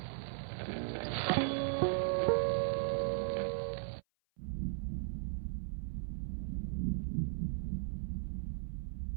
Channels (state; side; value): silent; left; 53 dB below the other